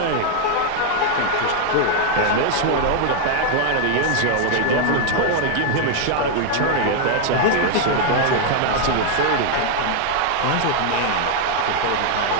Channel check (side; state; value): both; different; correlation 0.00